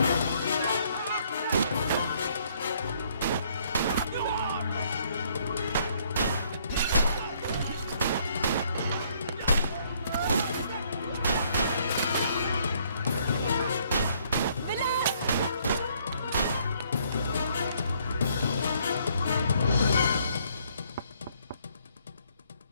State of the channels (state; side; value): inverted; both; correlation -0.65